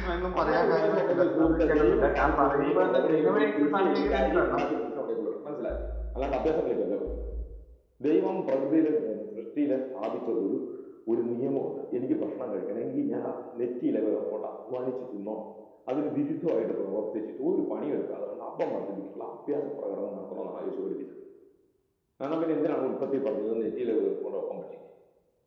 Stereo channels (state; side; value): identical; both; correlation 1.00